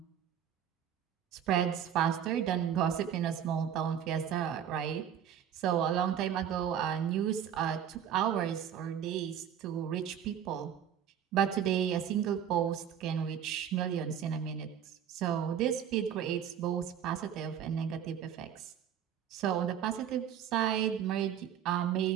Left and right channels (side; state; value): left; quieter; 9.2 dB